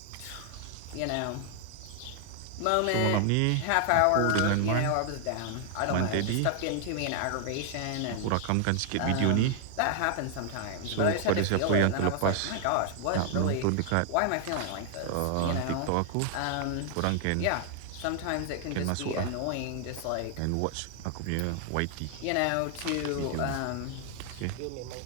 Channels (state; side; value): different; both; correlation 0.00